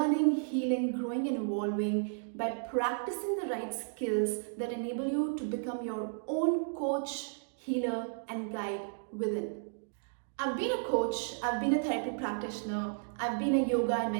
healing, growing, and evolving by practicing the right skills that enable you to become your own coach, healer, and guide within. I've been a coach, I've been a therapy practitioner, I've been a yoga and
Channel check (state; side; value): silent; left; digital silence